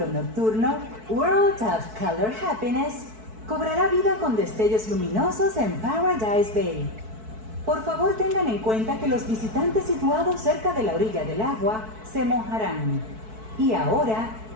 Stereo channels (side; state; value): left; late; 4.6 ms